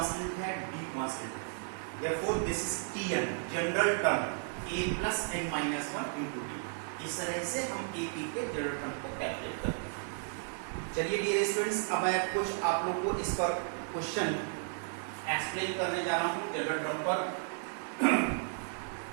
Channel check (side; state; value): left; silent; 55 dB below the other